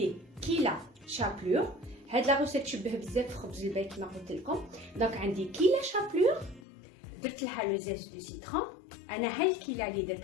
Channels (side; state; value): right; drops out; at 6.6 s